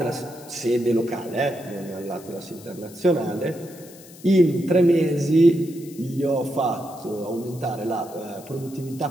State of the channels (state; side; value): noise; left; hiss, 20 dB below the sound